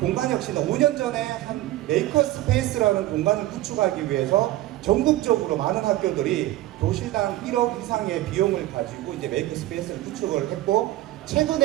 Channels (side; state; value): left; quieter; 16.0 dB